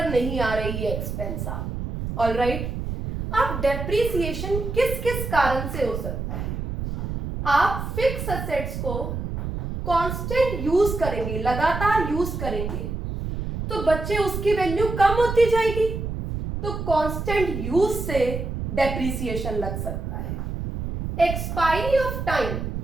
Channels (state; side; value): noise; right; rumble, 4 dB below the sound